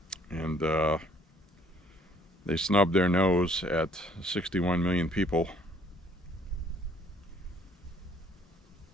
and they snub their nose at 61 million people.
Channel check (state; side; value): normal; both; correlation 0.60